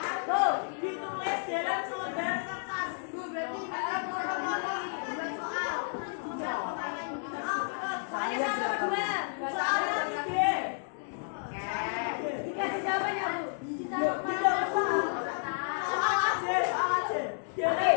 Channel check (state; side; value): silent; right; 57 dB below the other